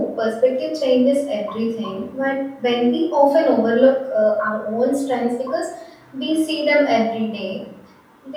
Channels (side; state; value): both; identical; correlation 1.00